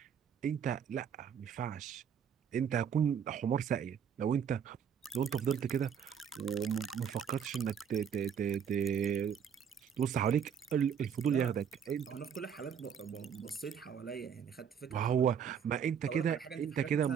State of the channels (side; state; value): left; quieter; 7.8 dB